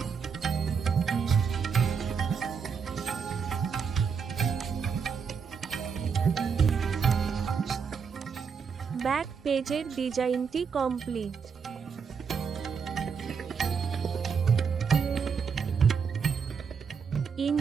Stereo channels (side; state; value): left; quieter; 6.1 dB